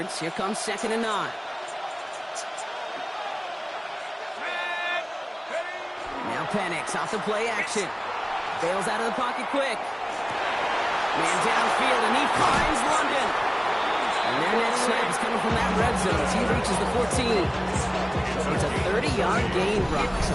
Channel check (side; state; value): both; identical; correlation 1.00